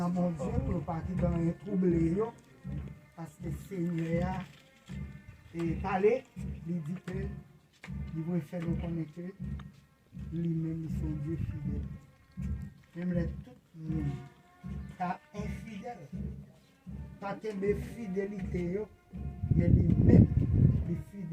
mon Dieu, pour partir dans un troublé, parce que le Seigneur est parlé, il dit que il va faire nous connaître lui-même, son Dieu fidèle. Même les tout le monde, car infidèle, pas que de fidélité, il y a lui-même, les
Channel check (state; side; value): identical; both; correlation 1.00